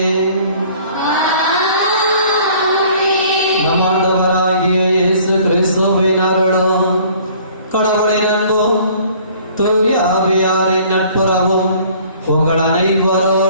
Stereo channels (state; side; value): inverted; both; correlation -0.54